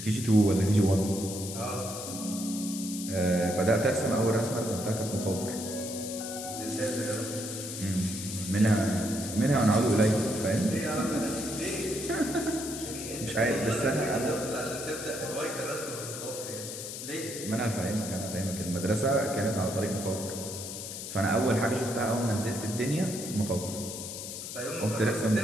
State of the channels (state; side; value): noise; left; hiss, 8 dB below the sound